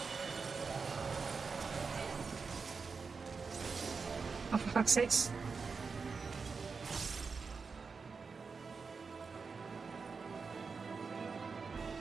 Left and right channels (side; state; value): left; quieter; 5.0 dB